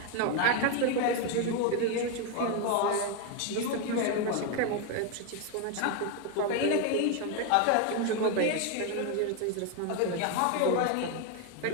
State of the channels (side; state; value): both; different; correlation 0.01